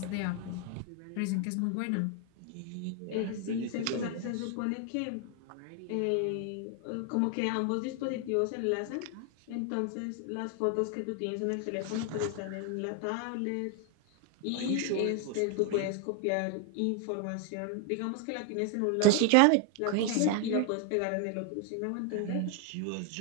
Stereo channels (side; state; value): both; different; correlation 0.01